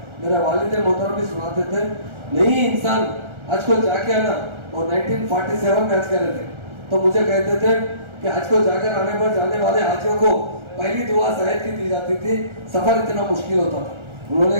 मेरे वालिद मोहतरम भी सुनाते थे, नहीं इंसान हज को जाके आना, और 1947 में हज कर रहे थे, तो मुझे कहते थे कि हज को जाकर आने पर जाने वाले हाजियों को पहली दुआ शायद की दी जाती थी, सफ़र इतना मुश्किल होता था। उन्होंने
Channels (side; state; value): left; late; 1.4 ms